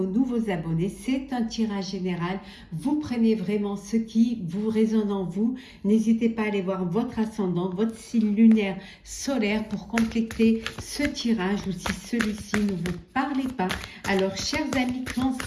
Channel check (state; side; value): identical; both; correlation 1.00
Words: nouveaux abonnés. C'est un tirage général. Vous prenez vraiment ce qui vous résonne en vous. N'hésitez pas à aller voir votre ascendant, votre signe lunaire solaire pour compléter ce tirage ou si celui-ci ne vous parlait pas. Alors chers amis